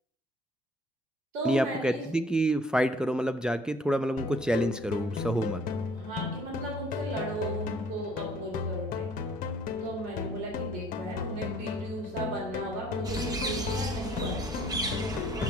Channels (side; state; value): both; normal; correlation 0.57